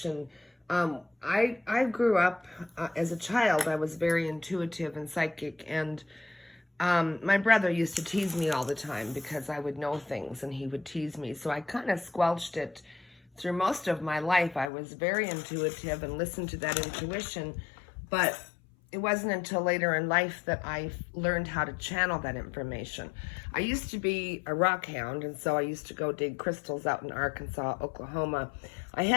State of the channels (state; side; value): drops out; right; at 14.7 s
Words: I grew up as a child. I was very intuitive and psychic, and my brother used to tease me all the time because I would know things and he would tease me. So I kind of squelched it through most of my life. I was very intuitive and listened to that intuition, but it wasn't until later in life that I learned how to channel that information. I used to be a rock hound, and so I used to go dig crystals out in Arkansas, Oklahoma. I